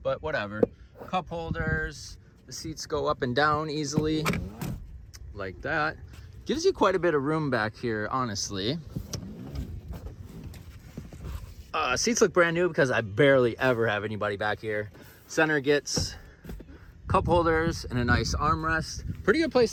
but whatever. Cup holders, the seats go up and down easily, like that. Gives you quite a bit of room back here, honestly. Seats look brand new because I barely ever have anybody back here. Center gets cup holders and a nice armrest. Pretty good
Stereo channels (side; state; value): both; identical; correlation 1.00